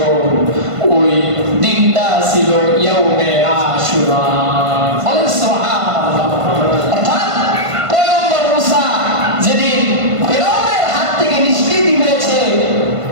ওই দিনটা ছিল ইয়াউমে আশুরা। বলেন সুবহানাল্লাহ। অর্থাৎ পয়গম্বর মুসা যেদিন ফিরআউনের হাত থেকে নিষ্কৃতি পেয়েছে,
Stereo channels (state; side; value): late; left; 1.5 ms